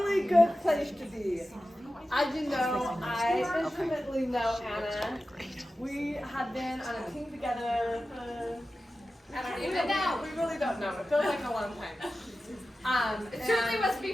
good place to be. As you know, I intimately know Anna. We have been on a team together for, I don't even know. We really don't know. It feels like a long time. It certainly was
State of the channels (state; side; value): normal; both; correlation 0.94